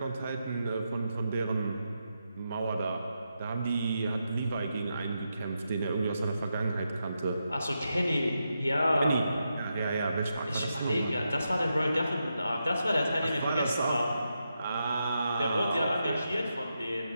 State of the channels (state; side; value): inverted; both; correlation -0.85